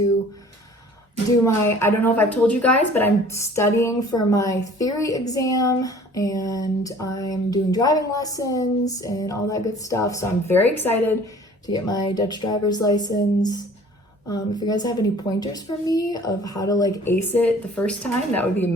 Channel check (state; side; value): normal; both; correlation 0.50